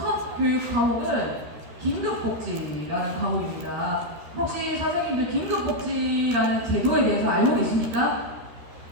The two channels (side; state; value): left; late; 13 ms